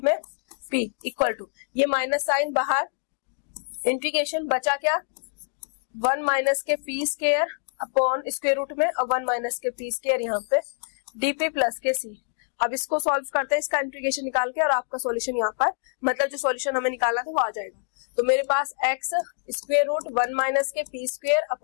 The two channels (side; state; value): right; silent; digital silence